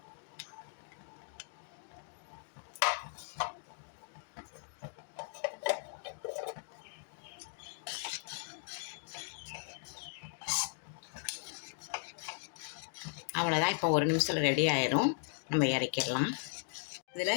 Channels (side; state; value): right; silent; digital silence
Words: அவ்வளோதான். இப்போ 1 நிமிஷத்தில் ரெடி ஆயிரும். நம்ம இறக்கிடலாம்.